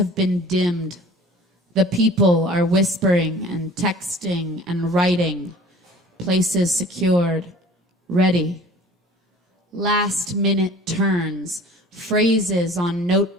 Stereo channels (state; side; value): normal; both; correlation 0.46